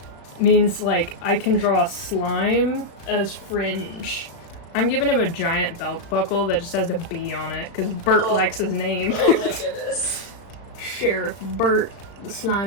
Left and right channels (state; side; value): late; right; 35 ms